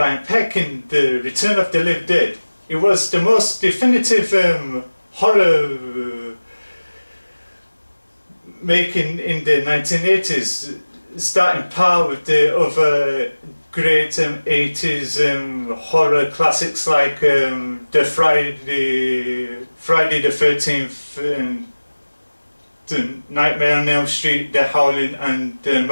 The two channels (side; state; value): both; inverted; correlation -1.00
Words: Peck in The Return of the Living Dead. It was the most definitive horror making in the 1980s, starting par with the other great 80s horror classics like the Friday the 13th, the Nightmare on Elm Street, The Howling and The